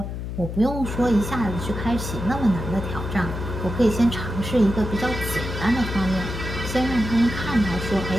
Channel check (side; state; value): left; noise; hum, 6 dB below the sound